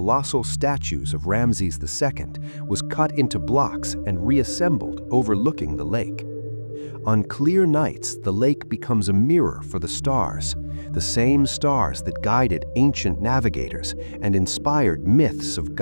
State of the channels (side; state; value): both; inverted; correlation -1.00